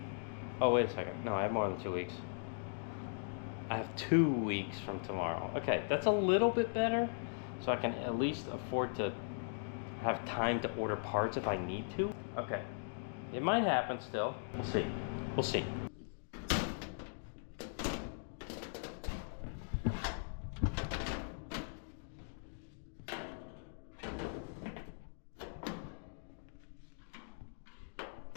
oh, wait a second. No, I have more than 2 weeks. I have 2 weeks from tomorrow. Okay, that's a little bit better, so I can at least afford to have time to order parts if I need to. Okay, it might happen still. We'll see. We'll see.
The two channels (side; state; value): right; silent; digital silence